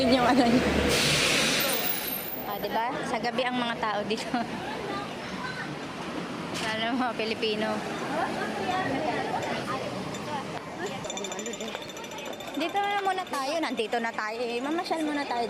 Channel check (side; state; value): both; identical; correlation 1.00